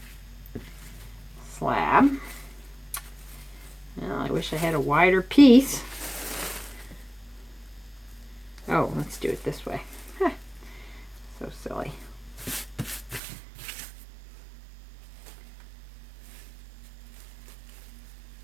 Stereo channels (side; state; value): left; drops out; at 13.2 s